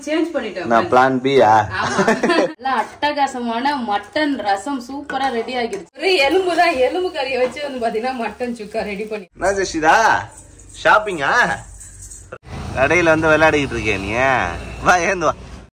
சேஞ்ச் பண்ணிட்டோம். நான் பிளான் பியா? ஆமா. நல்லா அட்டகாசமான மட்டன் ரசம் சூப்பரா ரெடி ஆகிடுச்சு. ஒரு எலும்புதான், எலும்பு கறியை வச்சு வந்து பாத்தீங்கன்னா மட்டன் சுக்கா ரெடி பண்ணி. என்ன ஜெஷிதா ஷாப்பிங்கா? கடையில வந்து விளையாடிக்கிட்டு இருக்கேன் நீ. வா ஏந்து வா.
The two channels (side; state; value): both; identical; correlation 1.00